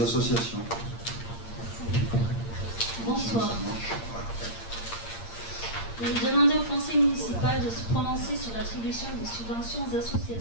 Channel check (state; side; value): late; right; 8.7 ms